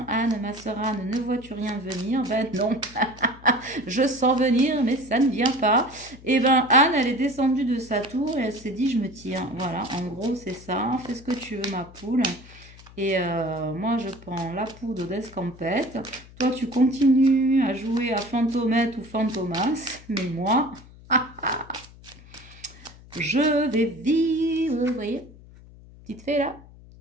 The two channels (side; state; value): left; noise; hum, 21 dB below the sound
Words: Anne, ma sœur Anne, ne vois-tu rien venir? Ben non, je sens venir, mais ça ne vient pas. Et ben Anne, elle est descendue de sa tour et elle s'est dit, je me tire. Voilà, en gros, c'est ça. Fais ce que tu veux, ma poule. Et moi, je prends la poudre d'escampette. Toi, tu continues à jouer à Fantomette ou Fantomas. Mais moi, je vais vivre. Vous voyez? Petite fée, là.